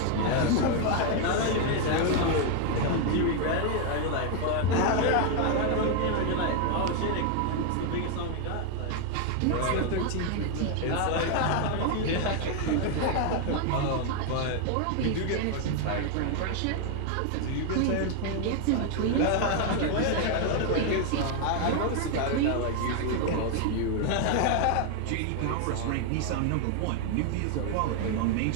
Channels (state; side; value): different; both; correlation 0.01